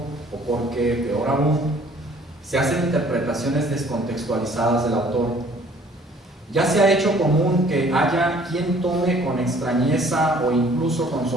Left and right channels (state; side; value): normal; both; correlation 0.56